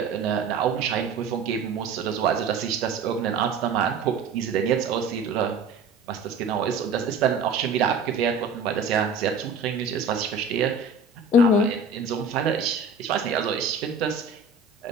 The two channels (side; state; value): left; quieter; 3.9 dB